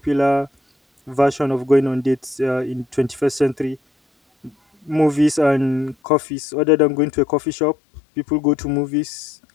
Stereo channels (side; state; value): right; drops out; at 6.0 s